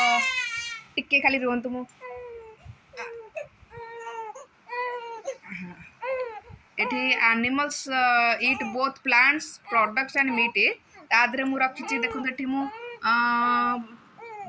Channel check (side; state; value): both; identical; correlation 1.00